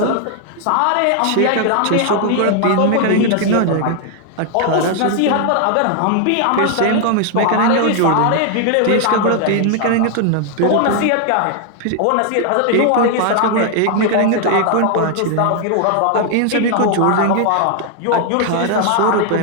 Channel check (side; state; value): both; different; correlation 0.00